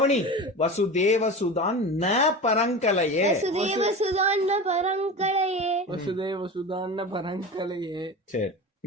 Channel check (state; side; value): normal; both; correlation 0.29